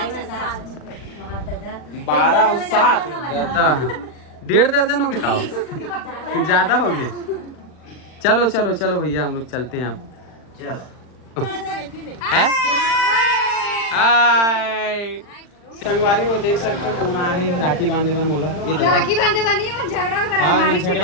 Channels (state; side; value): late; right; 39 ms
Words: 12 और 7 1.5 दर्जन हो गए खाओ ज्यादा हो गए चलो चलो चलो भैया हम लोग चलते हैं अब हाय संगवारी वो देख सकते हो कौन आए राखी बांधे पर मोला ये तो राखी बांधे वाली है, पर झगड़ा करा हां हमारी